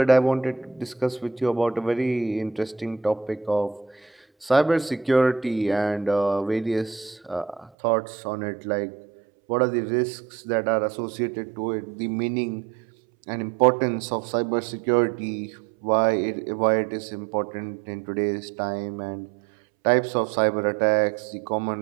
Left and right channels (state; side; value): drops out; left; at 7.7 s